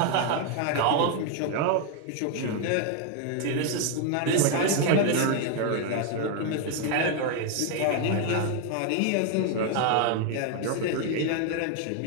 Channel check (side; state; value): both; different; correlation 0.01